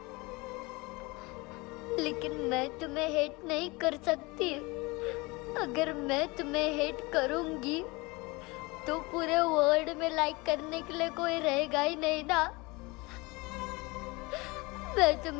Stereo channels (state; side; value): quieter; right; 24.9 dB